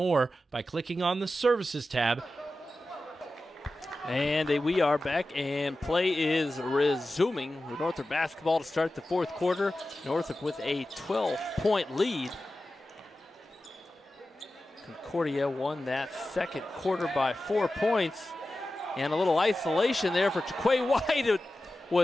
by clicking on the Services tab. And we are back, and play is resuming with Northrop basketball to start the fourth quarter. Northrop with a 12-point lead. Concordia won that second quarter by 4 points. And a little isolation there for Jaquay White, who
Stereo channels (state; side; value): normal; both; correlation 0.94